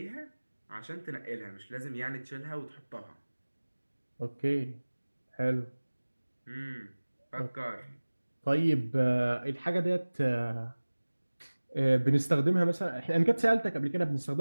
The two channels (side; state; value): both; inverted; correlation -1.00